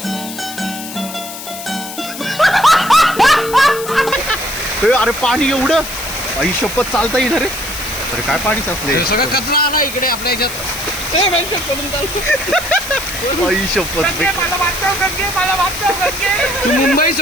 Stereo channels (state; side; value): noise; left; hiss, 10 dB below the sound